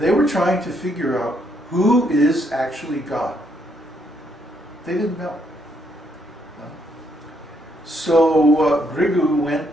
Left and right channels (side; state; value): both; normal; correlation 0.73